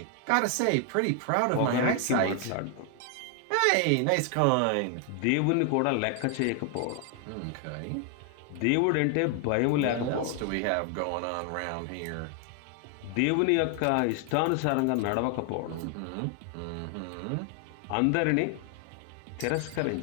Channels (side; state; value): both; different; correlation 0.00